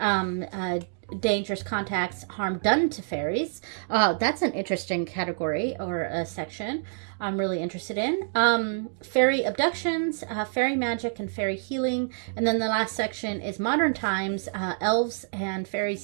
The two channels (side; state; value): left; silent; digital silence